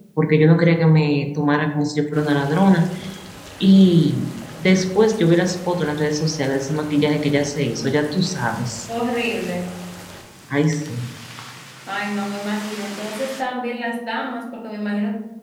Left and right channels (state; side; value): identical; both; correlation 1.00